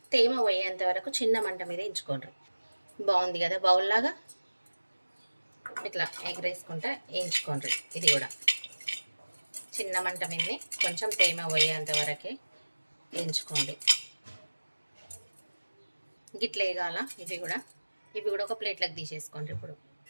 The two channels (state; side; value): inverted; both; correlation -1.00